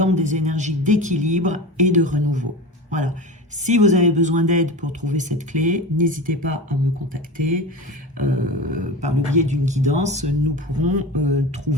des énergies d'équilibre et de renouveau. Voilà. Si vous avez besoin d'aide pour trouver cette clé, n'hésitez pas à me contacter. Par le biais d'une guidance, nous pourrons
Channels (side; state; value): both; normal; correlation 0.29